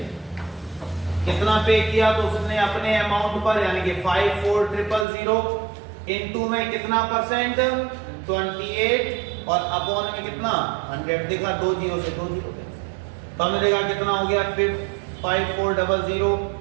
कितना पे किया, तो उसने अपने अमाउंट पर यानी कि 54,000 इनटू में कितना परसेंट 28 और अपॉन में कितना 100। देखा 2 जीरो से 2 जीरो, तो हमने देखा कितना हो गया 5400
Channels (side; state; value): left; drops out; at 5.1 s